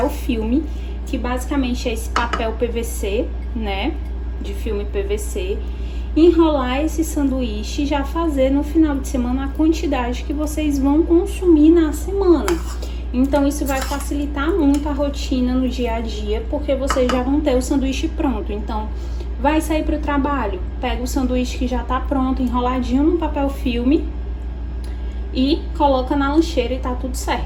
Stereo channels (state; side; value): identical; both; correlation 1.00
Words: filme, que basicamente é esse papel PVC, né? De filme PVC. Enrolar esse sanduíche e já fazer no final de semana a quantidade que vocês vão consumir na semana. Então, isso vai facilitar muito a rotina no dia a dia, porque vocês já vão ter o sanduíche pronto. Então, vai sair para o trabalho, pega o sanduíche que já tá pronto, enroladinho no papel filme e coloca na lancheira e tá tudo